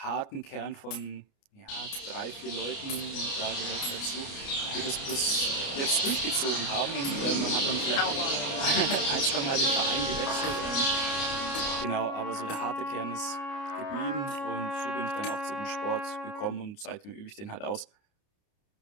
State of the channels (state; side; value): late; right; 29 ms